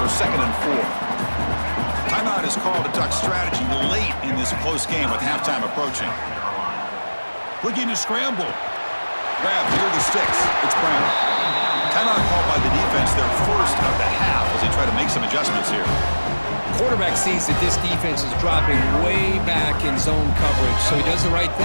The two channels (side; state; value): both; inverted; correlation -1.00